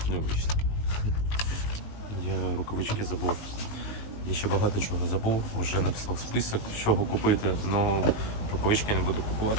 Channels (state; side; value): late; right; 19 ms